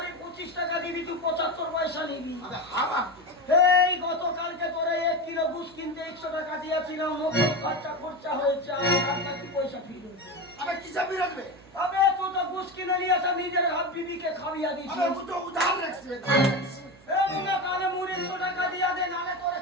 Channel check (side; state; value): right; noise; hum, 25 dB below the sound